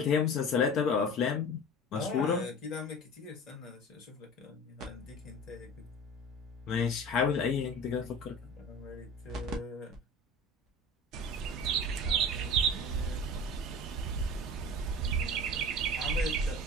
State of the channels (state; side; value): normal; both; correlation 0.36